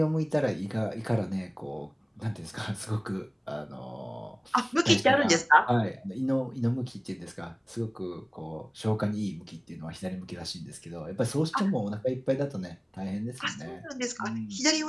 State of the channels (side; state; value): both; identical; correlation 1.00